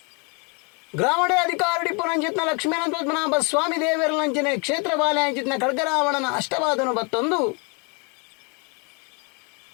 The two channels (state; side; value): quieter; right; 32.4 dB